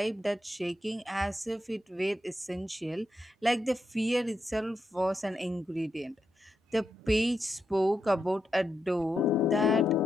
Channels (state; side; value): normal; both; correlation 0.84